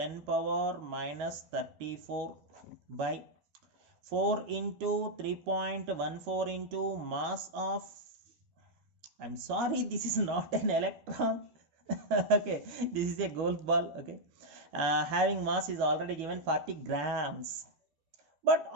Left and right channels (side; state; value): left; late; 13 ms